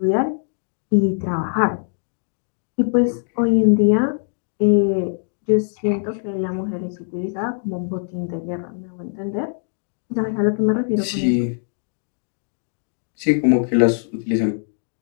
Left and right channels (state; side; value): silent; right; digital silence